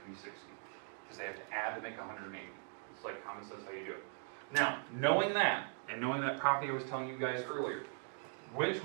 to be 60. Because they have to add to make 180. It's like common sense how you do it. Now, knowing that, and knowing that property I was telling you guys earlier, which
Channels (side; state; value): left; silent; 51 dB below the other